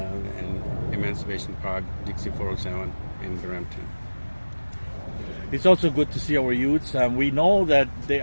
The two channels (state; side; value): inverted; both; correlation -1.00